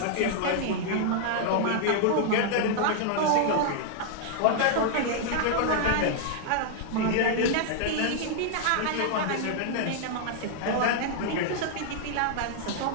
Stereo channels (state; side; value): different; both; correlation 0.00